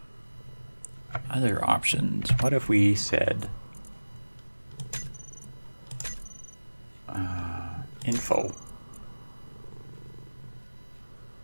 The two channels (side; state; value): both; inverted; correlation -1.00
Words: Other options. What if we said info?